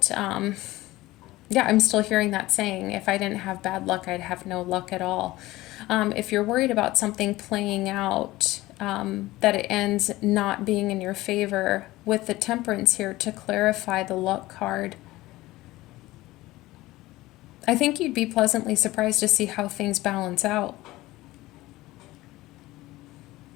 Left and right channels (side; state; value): right; quieter; 18.2 dB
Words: I'm still hearing that saying, if I didn't have bad luck, I'd have no luck at all. If you're worried about something playing out, that it ends not being in your favor, with the temperance here to clarify the luck card, I think you'd be pleasantly surprised to see how things balance out.